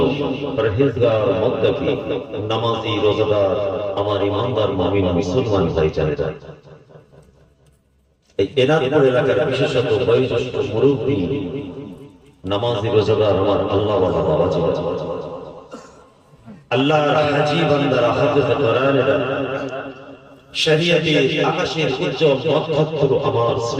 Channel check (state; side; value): identical; both; correlation 1.00